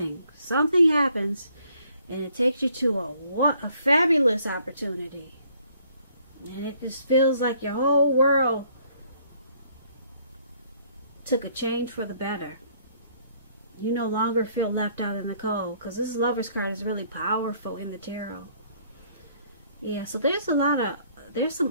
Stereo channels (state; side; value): inverted; both; correlation -0.64